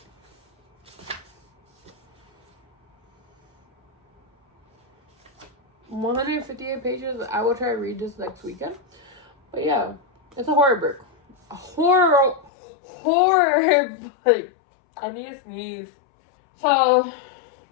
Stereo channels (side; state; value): right; drops out; at 12.5 s